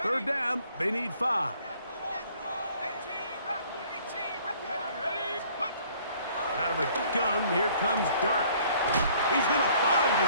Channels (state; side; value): inverted; both; correlation -0.58